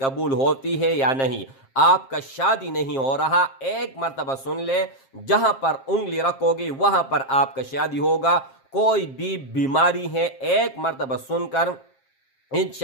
होती है या नहीं। आपका शादी नहीं हो रहा, एक मर्तबा सुन ले, जहां पर उंगली रखोगे वहां पर आपका शादी होगा। कोई भी बीमारी है, एक मर्तबा सुनकर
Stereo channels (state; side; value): late; right; 7.5 ms